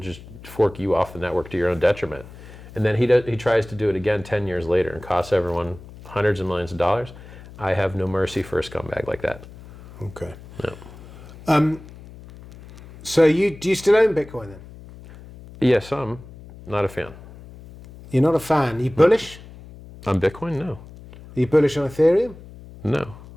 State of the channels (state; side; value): noise; left; hum, 18 dB below the sound